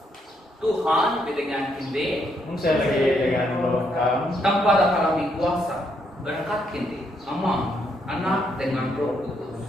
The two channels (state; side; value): normal; both; correlation 0.75